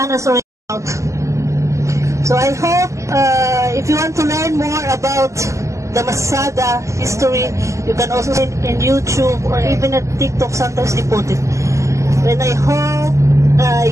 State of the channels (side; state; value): left; late; 0.15 ms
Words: is already out. So I hope if you want to learn more about the Masada history, you can also see it in YouTube or even at TikTok. Sometimes they put it. And I hope